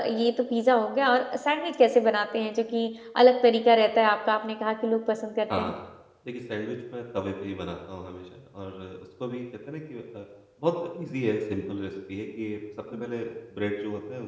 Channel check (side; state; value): both; identical; correlation 1.00